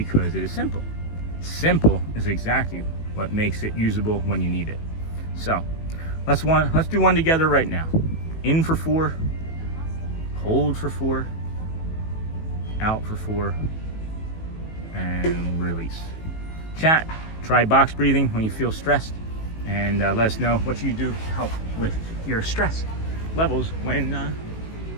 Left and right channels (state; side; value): late; right; 18 ms